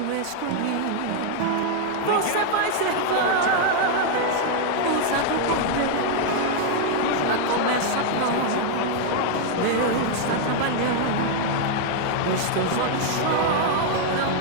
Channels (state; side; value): different; both; correlation 0.00